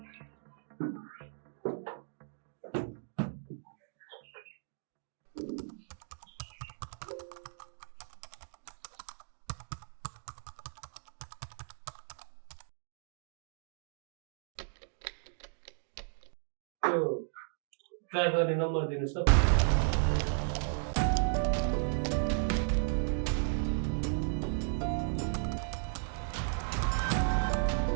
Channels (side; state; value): left; silent; digital silence